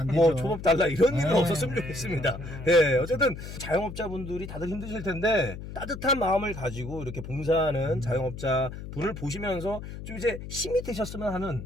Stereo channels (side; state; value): left; noise; hum, 10 dB below the sound